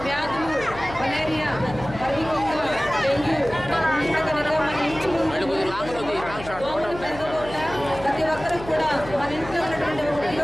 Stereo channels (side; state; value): left; noise; hum, 14 dB below the sound